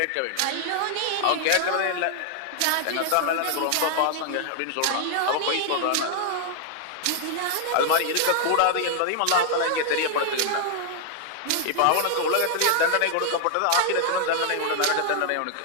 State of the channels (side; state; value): both; different; correlation 0.00